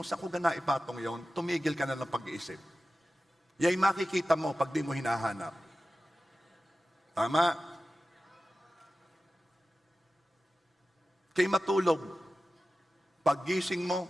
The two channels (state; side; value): normal; both; correlation 0.94